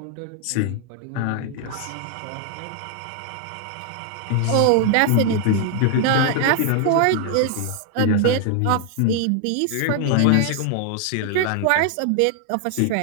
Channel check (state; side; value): different; both; correlation 0.00